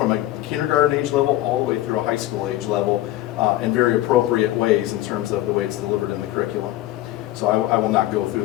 a kindergarten age level all the way through a high school age level in very appropriate ways in terms of the way it's delivered in the curriculum. So I will not go through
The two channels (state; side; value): quieter; right; 15.5 dB